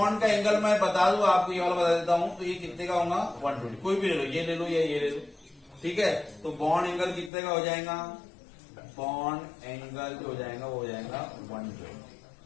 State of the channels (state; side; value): drops out; right; at 7.3 s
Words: का एंगल मैं बता दूं आपको, ये वाला बता देता हूं, तो ये कितने का होगा? 120। कोई भी ले लो, ये ले लो या ये ले लो। ठीक है, तो बॉन्ड एंगल कितने का हो जाएगा? बॉन्ड एंगल जो हो जाएगा वो हो जाएगा 120